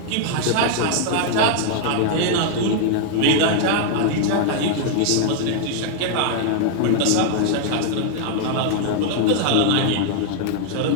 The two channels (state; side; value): different; both; correlation 0.00